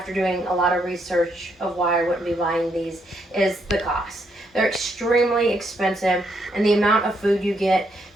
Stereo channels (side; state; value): both; normal; correlation 0.75